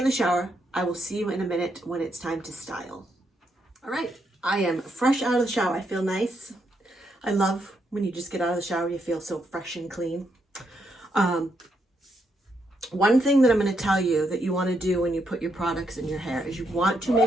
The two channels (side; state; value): both; normal; correlation 0.79